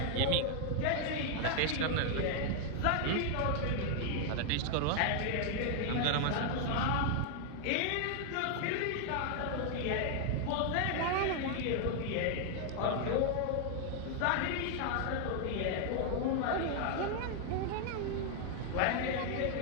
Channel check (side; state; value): both; different; correlation 0.00